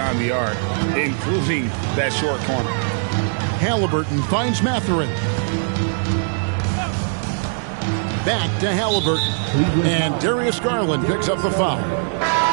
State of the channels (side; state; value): left; silent; 65 dB below the other